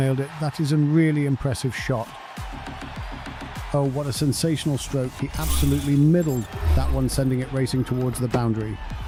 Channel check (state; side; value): identical; both; correlation 1.00